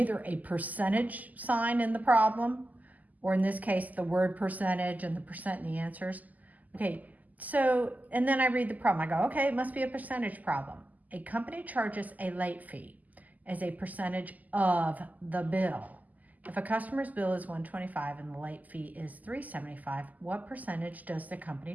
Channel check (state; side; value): late; left; 0.080 ms